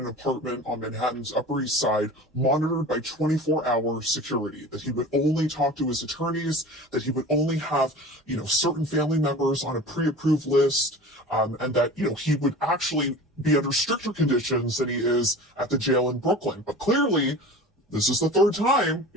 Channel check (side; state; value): both; normal; correlation 0.37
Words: apartment on Manhattan's Upper East Side, monitored by 24-hour security, that he would only talk to his attorneys, that he would only have, certain family members on a pre-approved list, and that, he would actually be under stricter conditions than he is at the jail in Brooklyn. But clearly, this is the 3rd time.